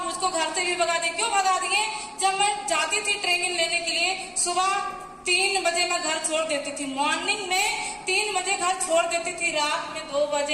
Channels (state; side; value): identical; both; correlation 1.00